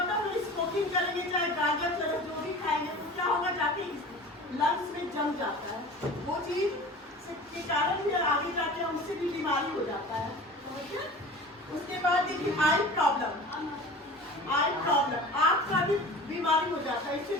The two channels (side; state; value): both; normal; correlation 0.38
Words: है, स्मोकिंग करेंगे, चाहे गांजा चरस जो भी खाएंगे, तो क्या होगा, जाके लंग्स में जम जाता है। वो चीज के कारण भी आगे जाके हमसे भी बीमारी हो जाता है, समझिए। उसके बाद देखिए आई प्रॉब्लम। आई प्रॉब्लम, आँख का भी बीमारी हो जाता है। इससे